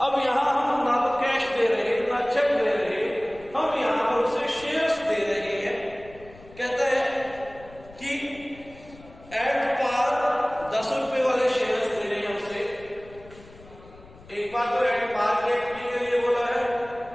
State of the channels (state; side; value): noise; left; rumble, 22 dB below the sound